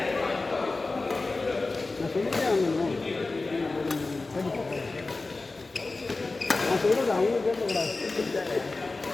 நான் சொல்கிறது அவங்க கேட்கக்கூடாது.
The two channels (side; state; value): right; quieter; 3.5 dB